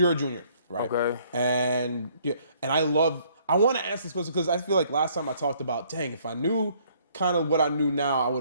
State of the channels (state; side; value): inverted; both; correlation -0.63